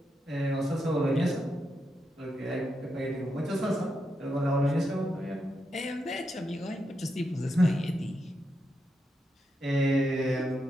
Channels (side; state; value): both; normal; correlation 0.84